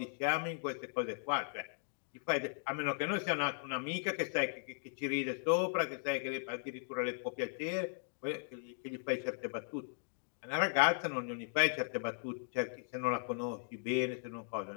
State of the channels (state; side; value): silent; right; digital silence